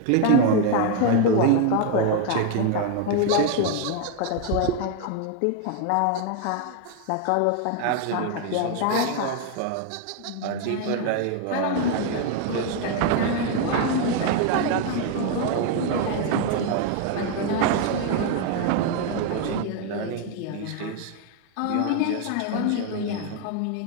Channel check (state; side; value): different; both; correlation 0.01